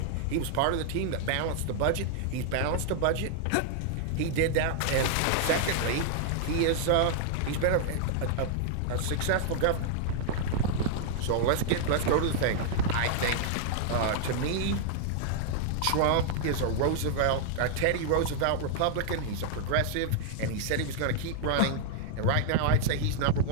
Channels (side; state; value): both; different; correlation -0.01